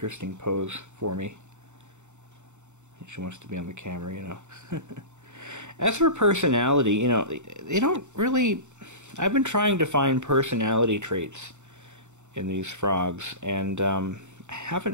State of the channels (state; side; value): late; left; 0.84 ms